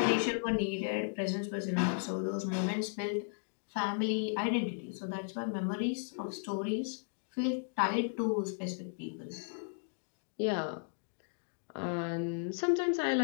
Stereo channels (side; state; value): right; silent; digital silence